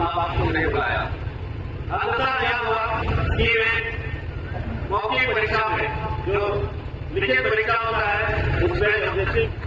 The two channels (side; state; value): both; identical; correlation 1.00